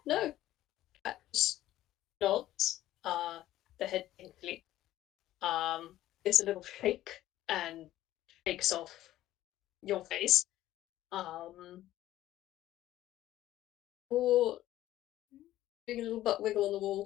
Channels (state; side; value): quieter; right; 14.3 dB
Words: no. Cat just nods. The head thankfully gives a little shake and shakes off your face. Um, or doing a little butt wiggle on the